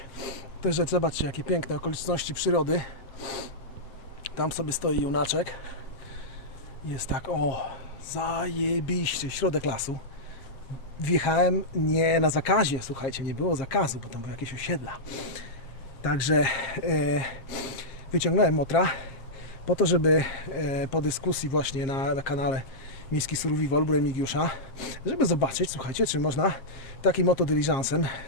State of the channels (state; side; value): late; right; 7.5 ms